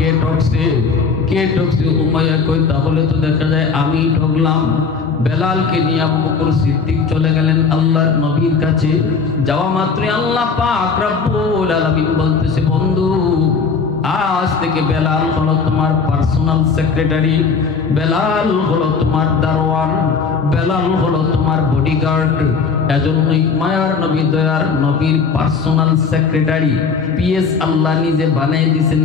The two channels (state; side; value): quieter; right; 5.2 dB